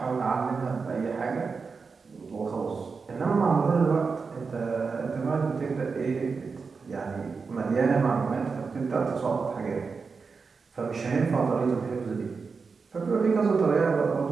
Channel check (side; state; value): left; quieter; 4.9 dB